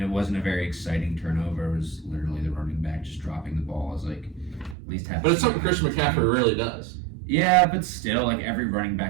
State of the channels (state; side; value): drops out; left; at 4.8 s